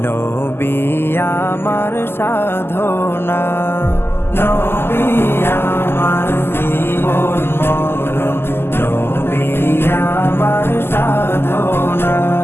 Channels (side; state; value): right; late; 0.11 ms